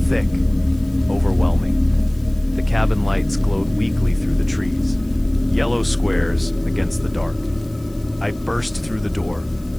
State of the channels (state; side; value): noise; left; hiss, 27 dB below the sound